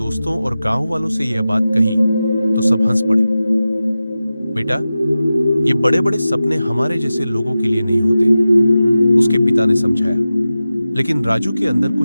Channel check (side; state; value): both; inverted; correlation -0.94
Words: और गांव वालों से यह बात कही तो सब हंस पड़े। बेटा, ये बड़े बड़े सपने हमारे जैसे लोगों के लिए नहीं होते, उसके पिता ने समझाया। लेकिन राजू के अंदर